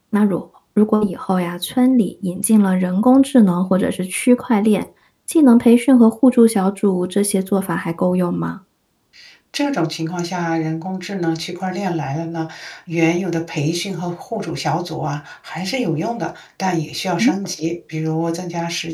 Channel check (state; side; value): identical; both; correlation 1.00